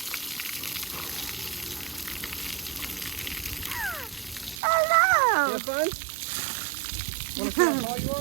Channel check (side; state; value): left; drops out; at 4.6 s